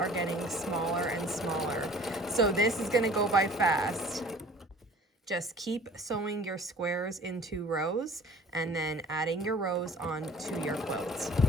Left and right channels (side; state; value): both; normal; correlation 0.48